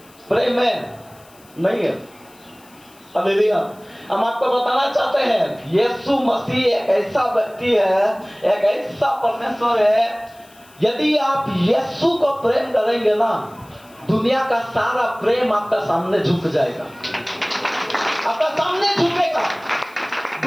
प्रेम है? नहीं है। हालेलुया। हम आपको बताना चाहते हैं, यीशु मसीह एक ऐसा व्यक्ति है, एक ऐसा परमेश्वर है, यदि आप यीशु को प्रेम करेंगे ना, दुनिया का सारा प्रेम आपका सामने झुक जाएगा, आपका सामने झुकेगा।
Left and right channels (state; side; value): noise; left; hiss, 27 dB below the sound